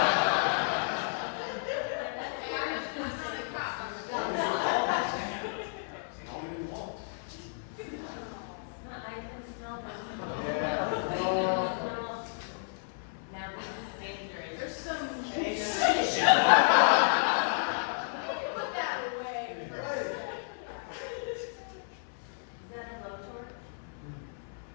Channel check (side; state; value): right; silent; 56 dB below the other